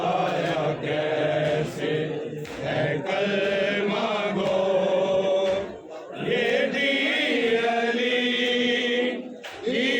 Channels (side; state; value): both; identical; correlation 1.00